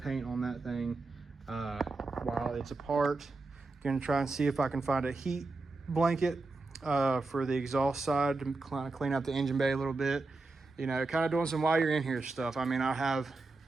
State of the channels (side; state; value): left; quieter; 3.5 dB